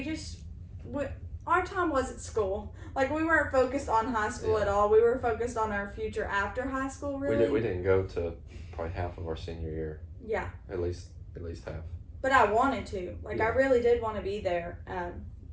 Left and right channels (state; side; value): identical; both; correlation 1.00